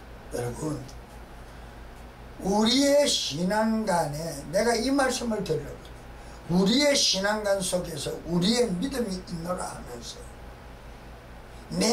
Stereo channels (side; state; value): both; identical; correlation 1.00